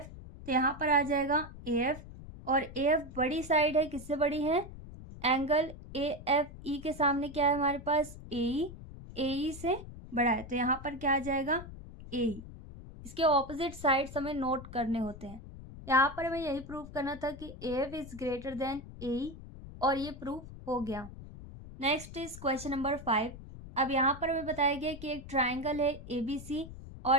तो यहाँ पर आ जाएगा ए एफ और ए एफ बड़ी साइड है। किससे बड़ी है? एंगल ए एफ ई के सामने क्या है हमारे पास? ए ई से बड़ा है, तो यहाँ पर क्या आ जाएगा? ए ई। इसके ऑपोजिट साइड्स हमें नोट करने होते हैं। यहाँ पर हमें यही प्रूव करना था कि A F is greater than A E और ये प्रूफ हो गया। Next is question number 5। अब यहाँ पर हमें बताया गया कि एक ट्राइंगल है ए बी सी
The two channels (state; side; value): noise; left; rumble, 14 dB below the sound